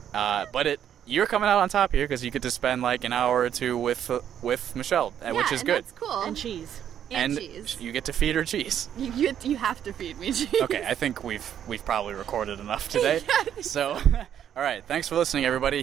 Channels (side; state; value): left; quieter; 9.7 dB